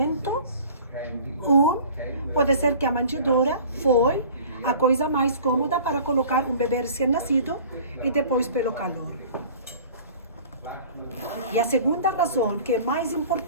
pode ser que a manjedoura foi a coisa mais cômoda para colocar um bebê recém-nascido e depois pelo calor. E a segunda razão, que é mais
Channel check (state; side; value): inverted; both; correlation -0.46